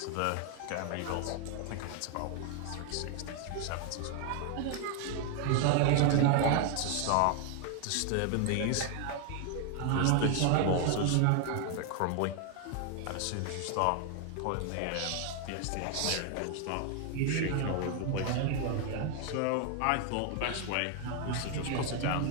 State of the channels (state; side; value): different; both; correlation 0.00